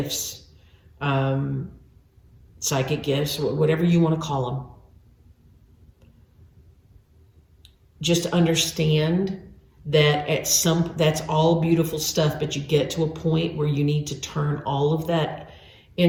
psychic gifts, whatever you want to call them, just understand that that's all beautiful stuff, but you get to a point where you need to turn all of that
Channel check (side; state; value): both; identical; correlation 1.00